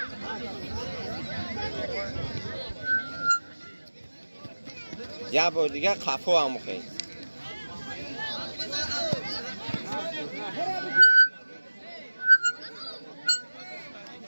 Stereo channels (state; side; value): inverted; both; correlation -1.00